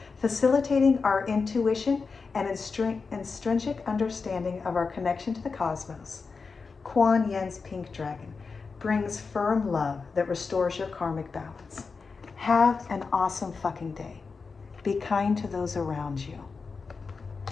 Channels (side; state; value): right; quieter; 4.7 dB